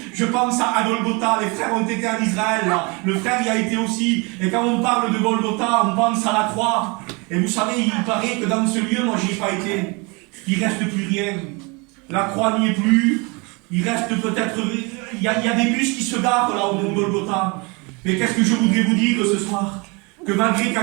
je pense à Golgotha, les frères ont été en Israël, là. Le frère y a été aussi, et quand on parle de Golgotha, on pense à la croix. Et vous savez, il paraît que dans ce lieu, moi j'y ai pas été, il reste plus rien. La croix n'y est plus, il reste peut-être, il y a des bus qui se garent là au mont Golgotha. Mais qu'est-ce que je voudrais vous dire ce soir? Que malgré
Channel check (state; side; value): quieter; left; 29.0 dB